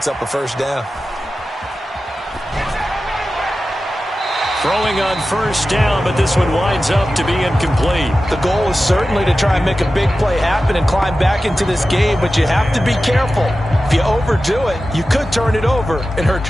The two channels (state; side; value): normal; both; correlation 0.94